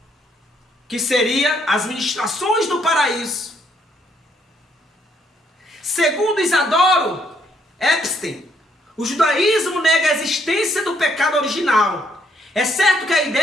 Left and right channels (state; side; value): normal; both; correlation 0.71